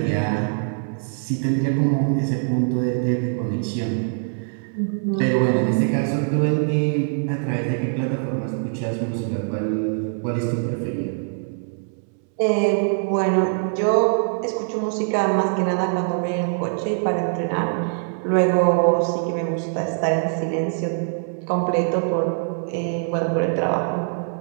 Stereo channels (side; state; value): left; silent; 63 dB below the other